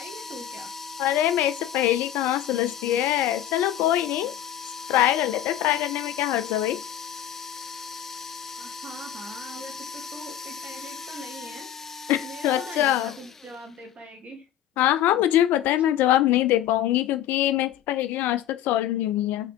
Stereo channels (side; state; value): right; quieter; 11.8 dB